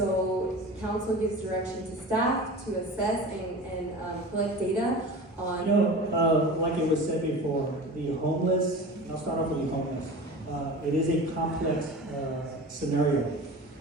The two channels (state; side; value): normal; both; correlation 0.34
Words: council gives direction to staff to assess and collect data on... You know, like it was said before, the homeless, I'll start off with the homeless. It is a complex scenario.